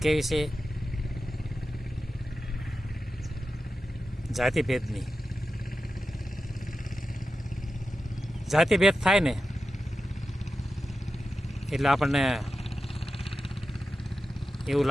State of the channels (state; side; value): normal; both; correlation 0.91